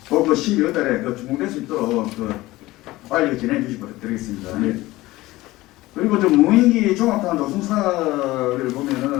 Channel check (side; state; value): right; quieter; 18.4 dB